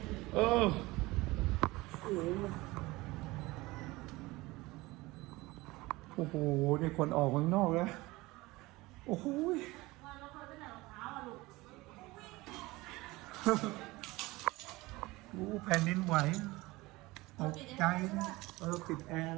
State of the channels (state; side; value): quieter; left; 20.9 dB